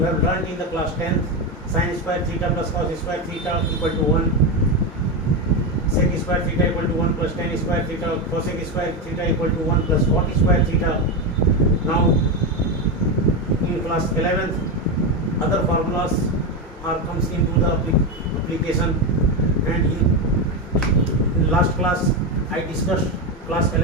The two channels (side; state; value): both; normal; correlation 0.12